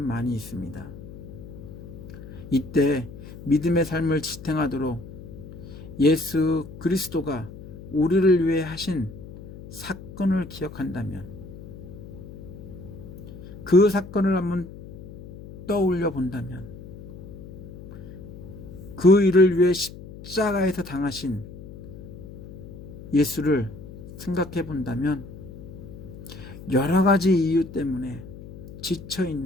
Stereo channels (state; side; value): noise; left; hum, 14 dB below the sound